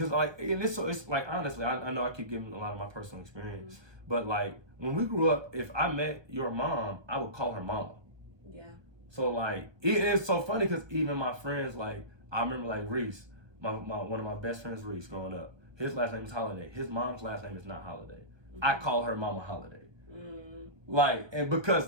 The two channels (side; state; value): left; late; 1.2 ms